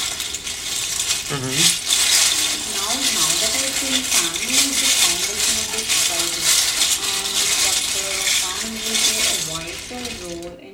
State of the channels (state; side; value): identical; both; correlation 1.00